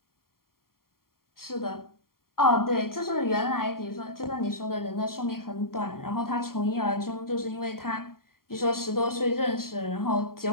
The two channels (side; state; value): right; late; 0.93 ms